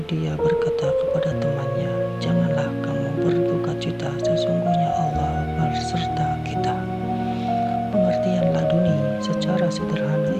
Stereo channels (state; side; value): noise; right; hum, 26 dB below the sound